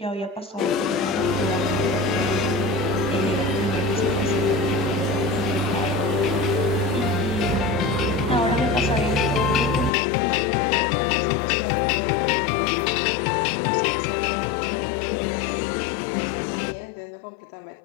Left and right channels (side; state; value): right; drops out; at 9.9 s